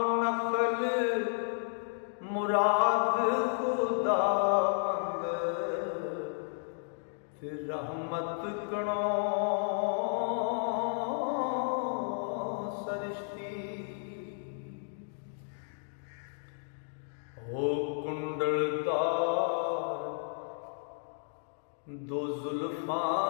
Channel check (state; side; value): silent; right; digital silence